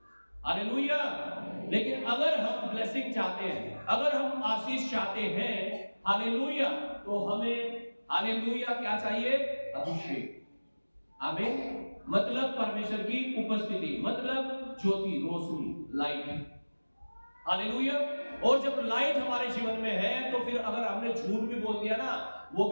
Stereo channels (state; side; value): inverted; both; correlation -1.00